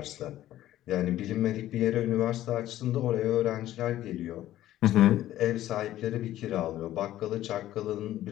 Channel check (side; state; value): right; quieter; 13.7 dB